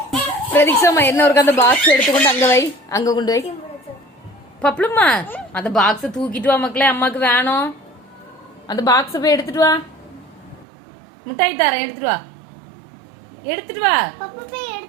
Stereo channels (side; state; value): left; drops out; at 10.7 s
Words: பிரதீக்ஷாமா என்ன ஒரு அந்த பாக்ஸ் எடுத்துக்கொண்டு அங்க வை, அங்க கொண்டு வை. பப்ளுமா அந்த பாக்ஸ தூக்கிட்டு வா மக்களே, அம்மாக்கு வேணும். அந்த பாக்ஸ போய் எடுத்துட்டு வா. முட்டாய் தரேன், எடுத்துட்டு வா, எடுத்துட்டு வா,